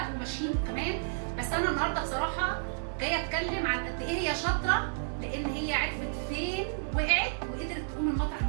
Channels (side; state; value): left; silent; 56 dB below the other